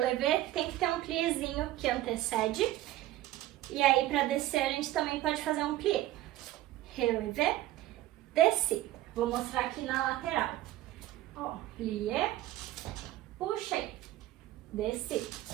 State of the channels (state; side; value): quieter; left; 15.1 dB